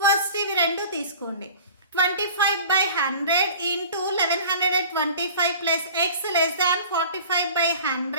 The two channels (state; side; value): inverted; both; correlation -0.43